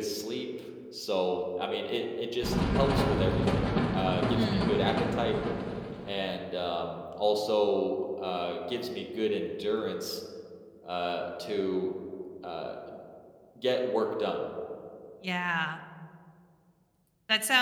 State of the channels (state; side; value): identical; both; correlation 1.00